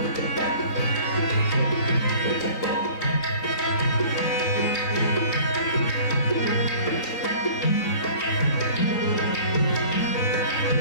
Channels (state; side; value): late; right; 3.9 ms